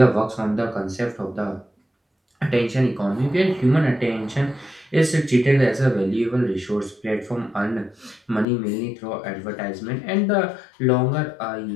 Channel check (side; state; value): right; drops out; at 8.5 s